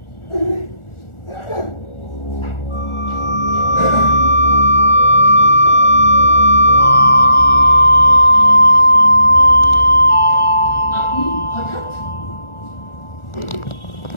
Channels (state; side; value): late; right; 1.4 ms